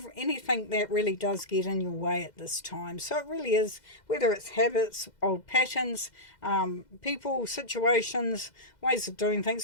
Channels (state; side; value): late; right; 2.0 ms